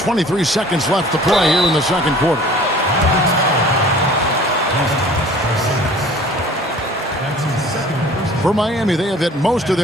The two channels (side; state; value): both; normal; correlation 0.48